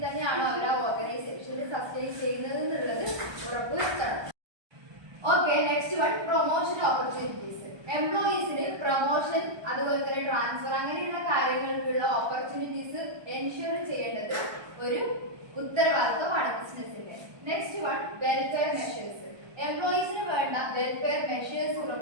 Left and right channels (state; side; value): late; left; 1.2 ms